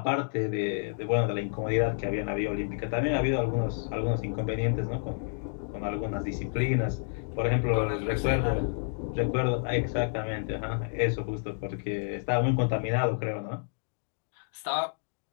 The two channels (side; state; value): right; silent; digital silence